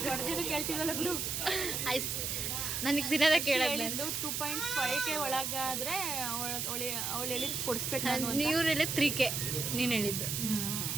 ಕೇಳ್ತೀವಲ್ಲ ಬಿಡು. ಐಸ್ ನನಗೆ ದಿನದ ಕೇಳೋದು. 2.5K ಒಳಗಾದರೆ ಅವಳು ಹೇಳಿದ್ದು ಕೊಡಿಸ್ಬೇಕು. ನೀವು ಹೇಳಿದ್ದು 3K, ನೀನು ಹೇಳಿದ್ದು.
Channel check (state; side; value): noise; right; hiss, 1 dB below the sound